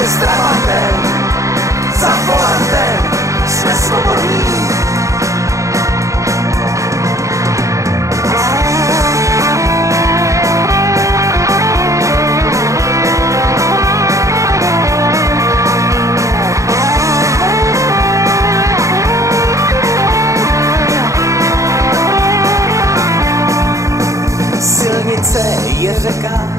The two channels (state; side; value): late; left; 0.15 ms